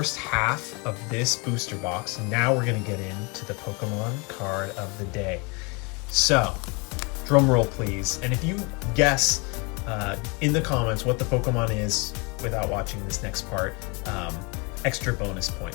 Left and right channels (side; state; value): right; quieter; 30.1 dB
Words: half of this booster box. Now we're gonna get into the Pokemon card of the day. So, drum roll please. And if you guess in the comments what the Pokemon is without watching this next part, extra bonus